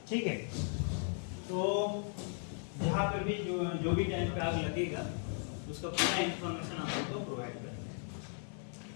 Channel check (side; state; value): right; silent; 53 dB below the other